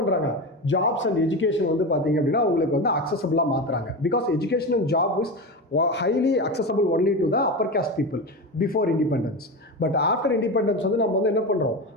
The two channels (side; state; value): both; normal; correlation 0.21